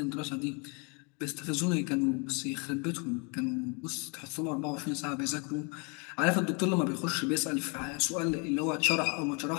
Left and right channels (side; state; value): right; quieter; 34.0 dB